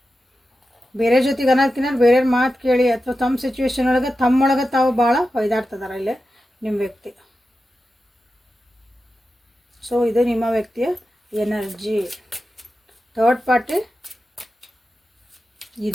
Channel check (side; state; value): both; normal; correlation 0.92